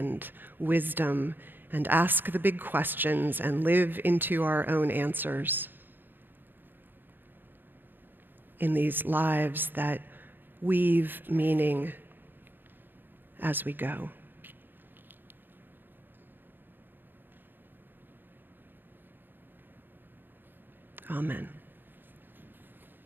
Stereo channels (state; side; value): late; left; 0.094 ms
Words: wisdom and ask the big questions and live into our own answers. in these lives that weave meaning as we go. Amen.